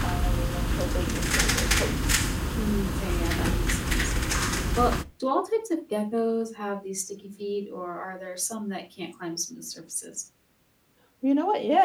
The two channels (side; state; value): both; identical; correlation 1.00